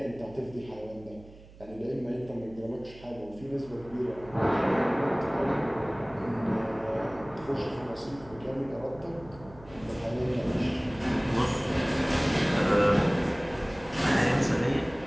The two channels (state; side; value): noise; right; hum, 21 dB below the sound